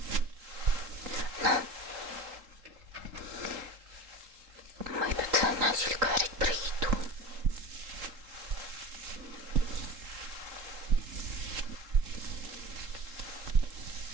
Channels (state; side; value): late; left; 3.9 ms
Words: Ну, мы тут начали говорить про еду.